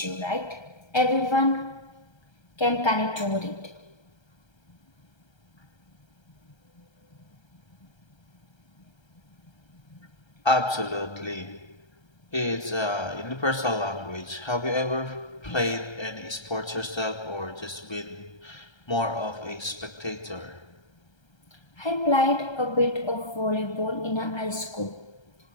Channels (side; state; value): right; late; 1.3 ms